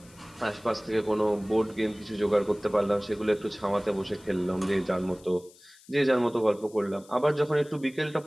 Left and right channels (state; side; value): noise; left; hiss, 25 dB below the sound